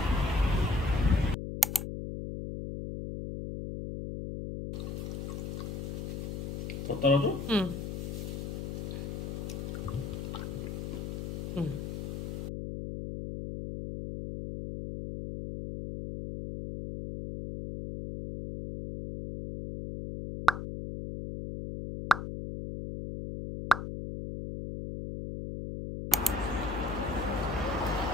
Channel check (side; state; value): left; noise; hum, 5 dB below the sound